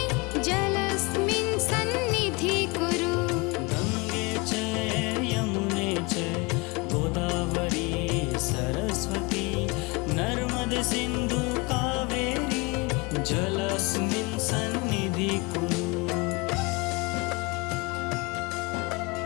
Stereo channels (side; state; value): right; quieter; 26.5 dB